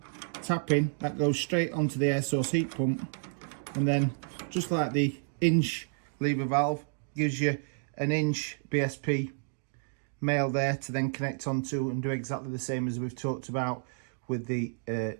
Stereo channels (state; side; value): silent; left; digital silence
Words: tapping that goes straight onto the air source heat pump, and then just like the inch lever valve, gives you an inch BSP male there to then connect onto and do exactly the same as we've talked about with the